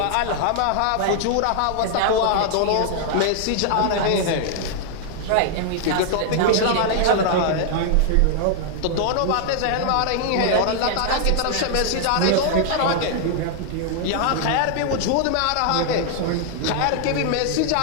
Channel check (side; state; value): both; different; correlation 0.00